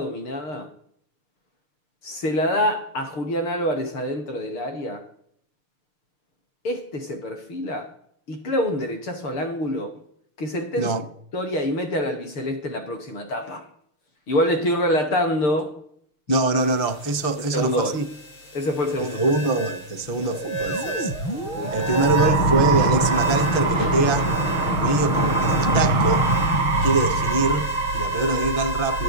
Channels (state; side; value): late; right; 6.6 ms